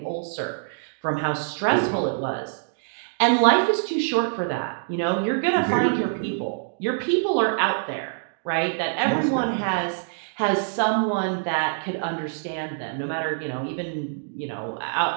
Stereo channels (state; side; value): silent; left; digital silence